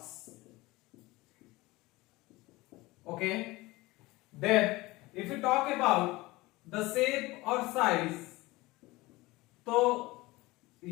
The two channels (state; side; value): quieter; right; 20.8 dB